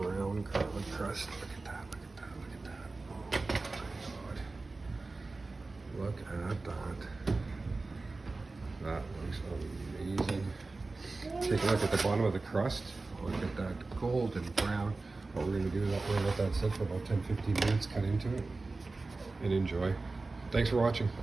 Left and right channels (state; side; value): quieter; left; 3.5 dB